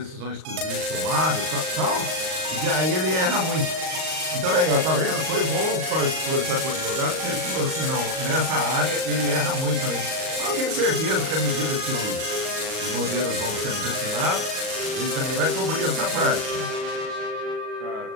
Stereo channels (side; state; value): left; late; 38 ms